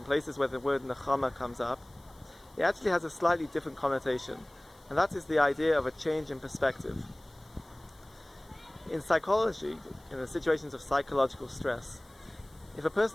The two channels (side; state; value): left; noise; hiss, 29 dB below the sound